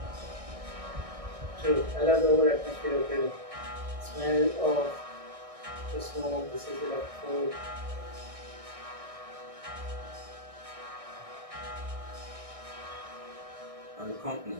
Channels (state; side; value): late; left; 1.6 ms